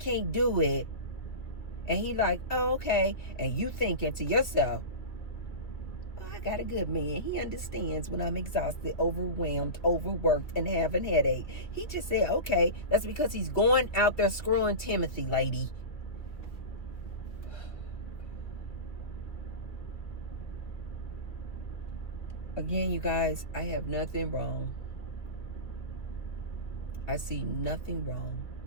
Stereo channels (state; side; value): late; right; 2.4 ms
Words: do it. And he like, oh, okay. And you thinking to yourself, oh, I got a good man. He understands when I'm exhausted, overwhelmed, overworked, and having headache. He just said, okay, that's because he's going out there screwing Timothy, lady. Again, you guys, I have nothing wrong. I see nothing wrong